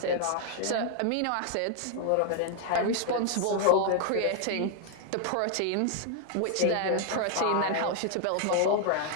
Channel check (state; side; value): different; both; correlation 0.00